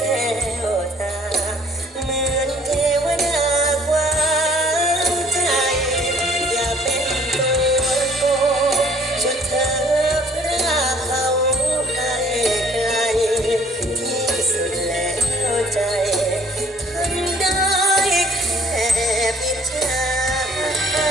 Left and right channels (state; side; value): normal; both; correlation 0.56